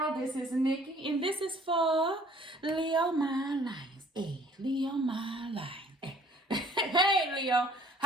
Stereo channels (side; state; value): both; normal; correlation 0.56